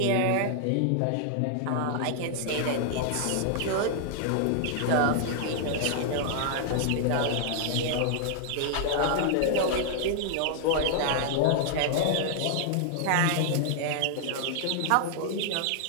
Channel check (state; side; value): different; both; correlation 0.00